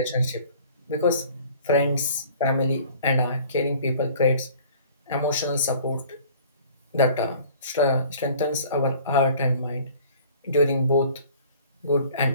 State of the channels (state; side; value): inverted; both; correlation -0.50